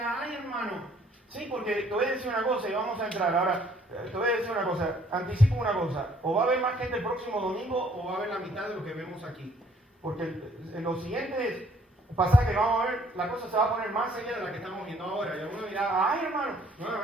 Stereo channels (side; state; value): both; normal; correlation 0.62